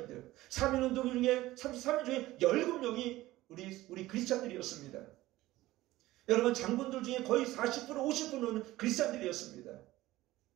3.1운동 중에 33인 중에 17명이 우리 크리스찬들이었습니다. 여러분 장군들 중에 거의 40% 50%는 크리스찬들이었습니다.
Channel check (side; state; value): left; quieter; 17.0 dB